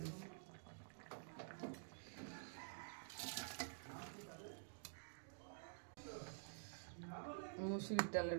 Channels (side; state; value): left; silent; digital silence